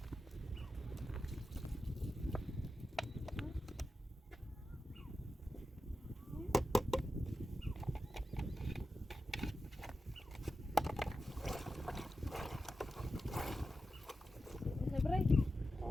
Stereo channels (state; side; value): normal; both; correlation 0.91